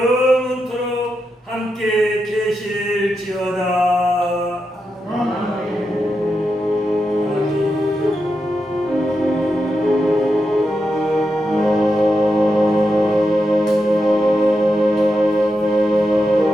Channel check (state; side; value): normal; both; correlation 0.86